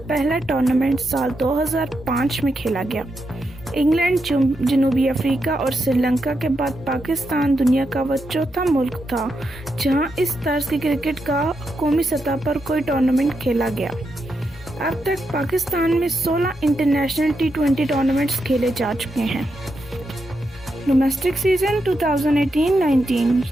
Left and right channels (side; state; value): both; normal; correlation 0.84